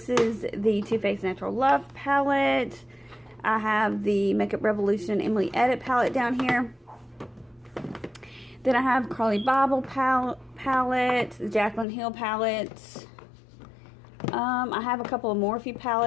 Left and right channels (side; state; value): right; drops out; at 11.9 s